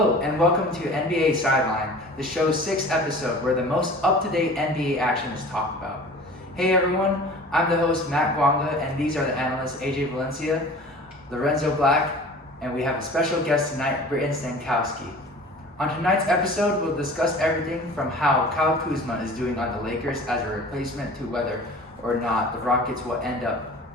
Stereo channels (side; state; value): both; normal; correlation 0.42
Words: and welcome to NBA Sideline, the show's 6th episode where the most up-to-date NBA action is talked about. Hey everyone, I'm the host Matt Guanga, and these are the analysts AJ Valencia, Lorenzo Black, and we have a special guest tonight, Britton Stankosky. On tonight's episode, we'll discuss everything from how Kyle Kuzma is doing on the Lakers as a replacement to whether or not the Rockets will end up